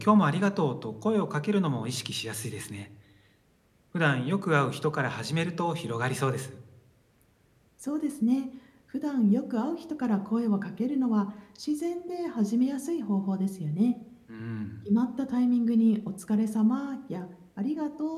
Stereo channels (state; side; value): identical; both; correlation 1.00